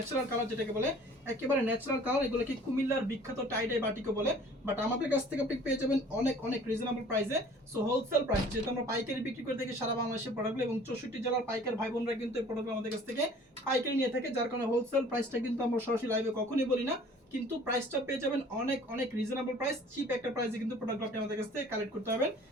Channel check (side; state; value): both; normal; correlation 0.50